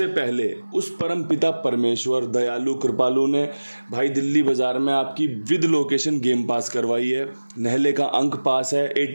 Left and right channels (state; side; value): inverted; both; correlation -1.00